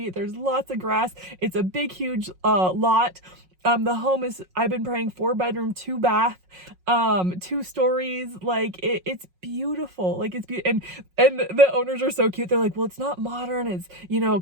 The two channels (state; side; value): late; left; 5.5 ms